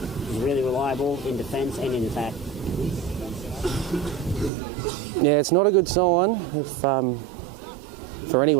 really reliable in defence and in attack. Yeah, it's not a good sign if for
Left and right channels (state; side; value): drops out; left; at 4.5 s